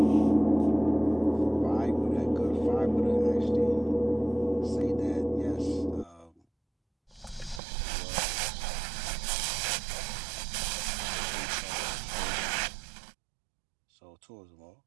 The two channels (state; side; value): drops out; left; at 7.6 s